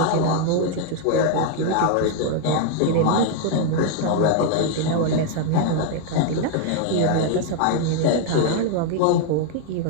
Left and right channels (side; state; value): both; different; correlation 0.00